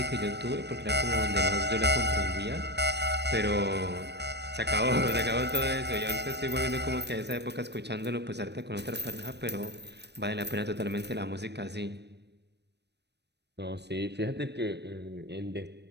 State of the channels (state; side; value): late; left; 0.50 ms